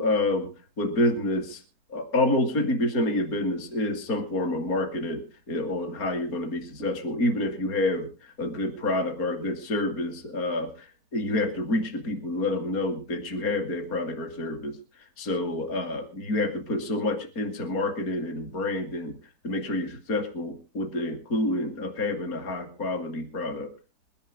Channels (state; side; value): late; right; 4.3 ms